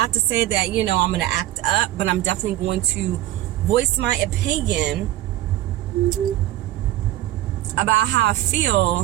to say that, you know, I'm going to act up, but I'm definitely going to voice my opinion about how I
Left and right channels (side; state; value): left; quieter; 14.7 dB